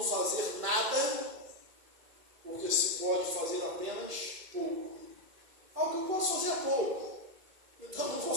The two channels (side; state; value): left; late; 2.2 ms